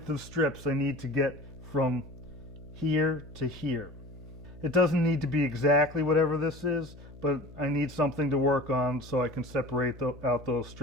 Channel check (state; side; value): noise; left; hum, 19 dB below the sound